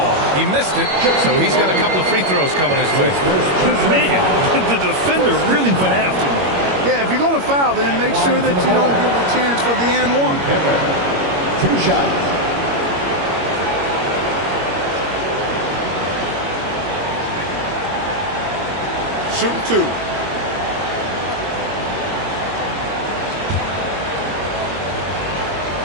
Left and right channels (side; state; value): left; late; 21 ms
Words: He missed it, so he's got a couple of free throws coming his way. Man, the defender really went after him. Yeah, if you're going to foul, then make sure that you don't give a chance for the and one. 2 shots. Shoot 2.